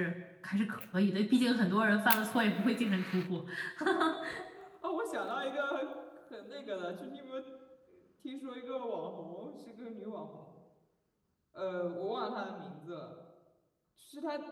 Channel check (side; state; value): both; identical; correlation 1.00